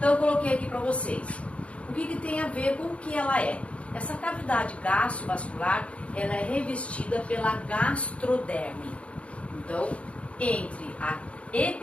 eu coloquei aqui para vocês. O que tem a ver com o que ela é? Essa cavidade gastrovascular, ela é revestida pela gastroderme. Então, entre a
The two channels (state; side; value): late; right; 0.063 ms